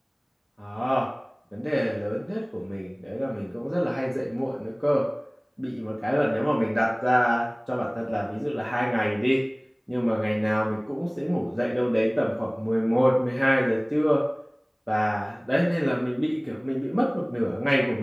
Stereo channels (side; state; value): both; identical; correlation 1.00